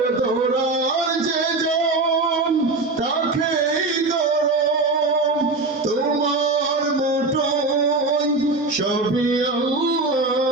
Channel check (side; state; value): left; quieter; 3.4 dB